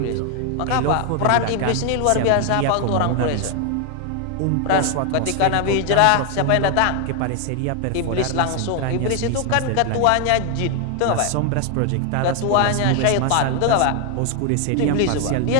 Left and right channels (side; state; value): both; different; correlation 0.00